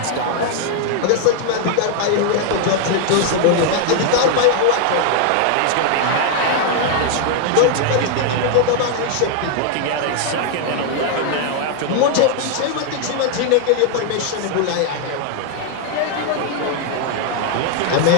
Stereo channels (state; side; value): different; both; correlation 0.00